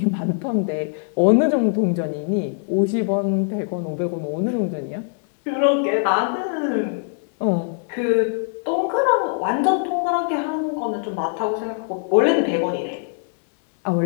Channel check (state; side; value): silent; right; 61 dB below the other